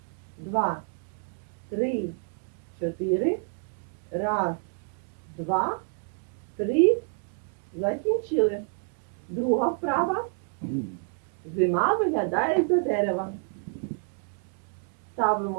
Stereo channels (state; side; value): quieter; left; 39.7 dB